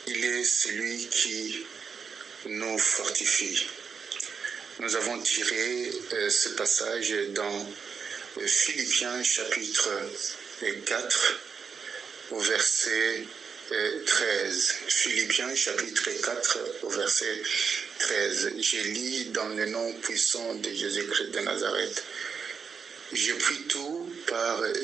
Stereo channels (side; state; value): left; quieter; 6.0 dB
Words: Il est celui qui nous fortifie ». Nous avons tiré ce passage dans Philippiens chapitre 4 au verset 13. Philippiens chapitre 4 au verset 13. Je lis dans le nom puissant de Jésus-Christ de Nazareth. Je prie tout par